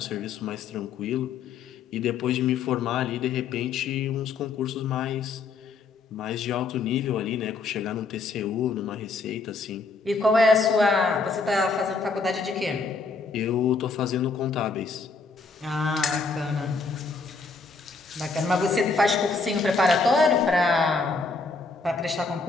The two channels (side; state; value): right; quieter; 4.3 dB